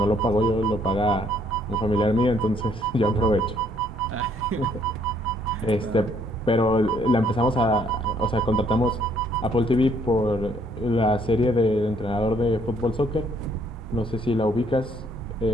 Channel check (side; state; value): both; normal; correlation 0.66